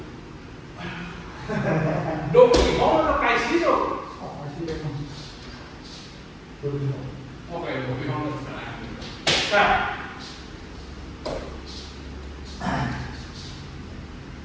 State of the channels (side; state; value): both; identical; correlation 1.00